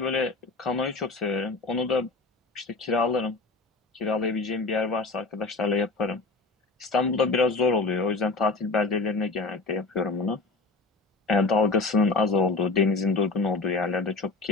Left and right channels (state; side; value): quieter; right; 3.7 dB